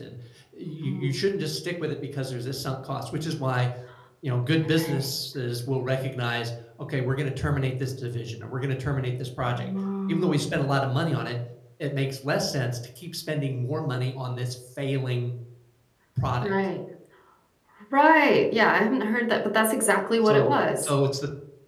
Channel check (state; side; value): identical; both; correlation 1.00